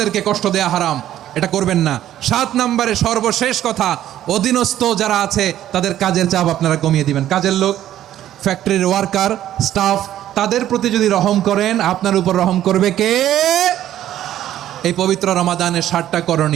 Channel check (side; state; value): left; quieter; 12.3 dB